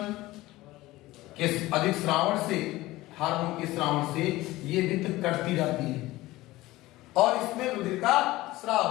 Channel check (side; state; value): right; quieter; 18.2 dB